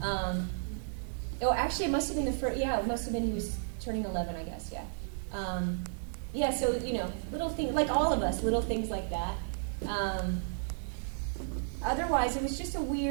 Actually, it must have been it must have been he was turning 11, I guess, yeah. So, little things, like all of us, little things like that. Otherwise, it was just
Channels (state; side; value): silent; left; digital silence